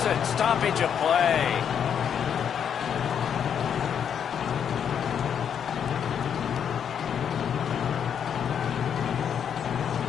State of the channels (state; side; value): quieter; right; 8.1 dB